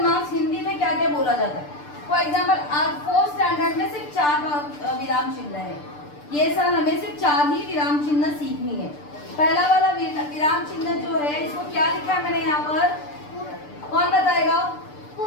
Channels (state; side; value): late; right; 6.8 ms